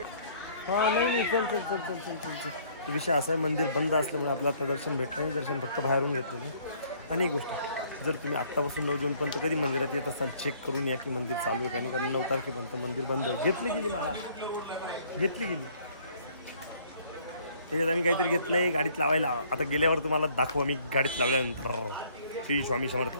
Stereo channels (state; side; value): inverted; both; correlation -0.60